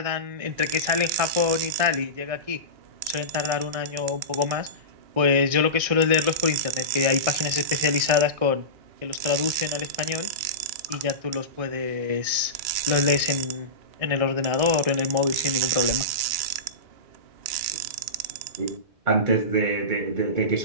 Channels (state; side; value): late; left; 1.6 ms